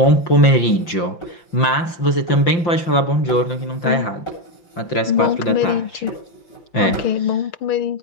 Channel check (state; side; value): late; right; 5.8 ms